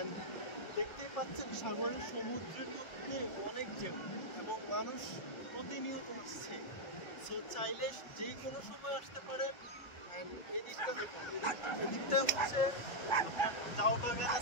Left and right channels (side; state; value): right; late; 1.4 ms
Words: দেখতেই পাচ্ছেন সাগরের সমুদ্রের মধ্যে অনেক ঢেউ এবং মানুষ প্রতিনিয়ত আসছে। সো চাইলে যে কোনো সময় আসতে পারেন। এই দিকটা হচ্ছে জাউ বাগান